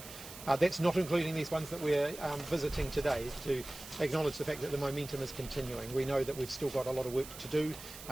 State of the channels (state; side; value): noise; right; hiss, 13 dB below the sound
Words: That's not including these ones that we're visiting today, to acknowledge the fact that the momentum is continuing. We know that we've still got a lot of work to do